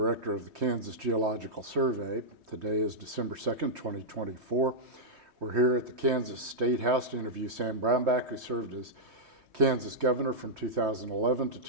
of the Kansas Geological Survey. Today is December 2nd, 2024. We're here at the Kansas State House to interview Sam Brownback, who served as Kansas governor from 2011 to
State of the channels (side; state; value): left; late; 3.2 ms